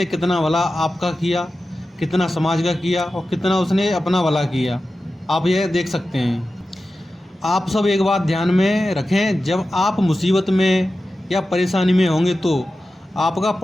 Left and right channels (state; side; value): normal; both; correlation 0.93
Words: कितना भला आपका किया, कितना समाज का किया और कितना उसने अपना भला किया, आप यह देख सकते हैं। आप सब एक बात ध्यान में रखें, जब आप मुसीबत में या परेशानी में होंगे तो आपका